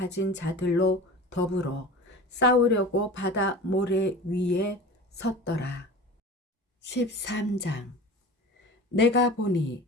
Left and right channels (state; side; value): normal; both; correlation 0.36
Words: 자들로 더불어 싸우려고 바다 모래 위에 섰더라. 13장 내가 보니